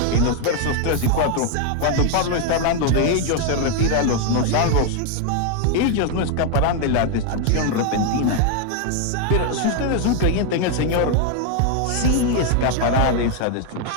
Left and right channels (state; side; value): different; both; correlation 0.00